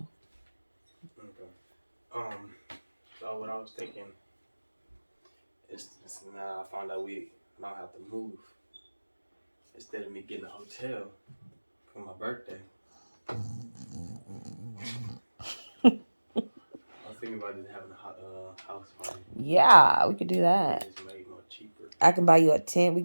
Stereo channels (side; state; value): both; inverted; correlation -1.00